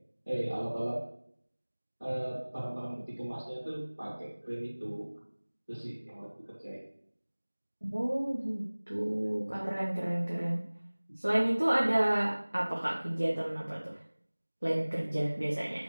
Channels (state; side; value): inverted; both; correlation -1.00